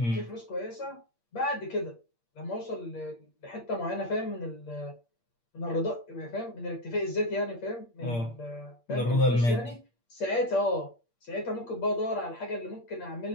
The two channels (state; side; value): late; right; 8.6 ms